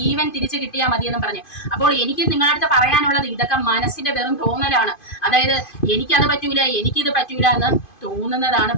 തിരിച്ചു കിട്ടിയാൽ മതിയെന്ന് പറഞ്ഞു. അപ്പോൾ എനിക്ക് നിങ്ങളുടെ അടുത്ത് പറയാനുള്ളത്, ഇതൊക്കെ മനസ്സിന്റെ വെറും തോന്നലാണ്. അതായത് എനിക്കത് പറ്റൂല, എനിക്കിത് പറ്റൂല എന്ന് തോന്നുന്നതാണ്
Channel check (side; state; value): right; late; 2.5 ms